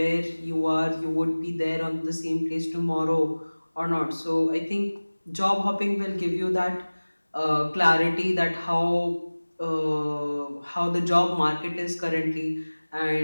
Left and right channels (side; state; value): both; inverted; correlation -1.00